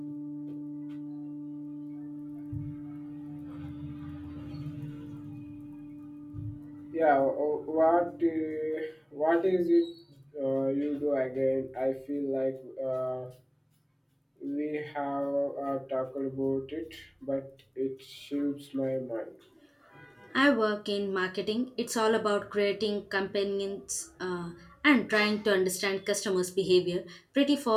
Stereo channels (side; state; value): both; identical; correlation 1.00